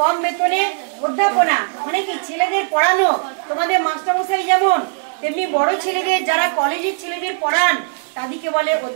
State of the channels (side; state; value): left; silent; 63 dB below the other